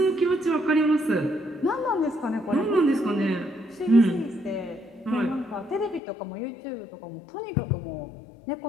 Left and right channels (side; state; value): right; drops out; at 6.0 s